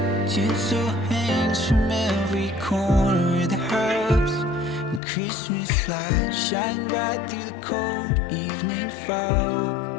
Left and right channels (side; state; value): right; drops out; at 5.0 s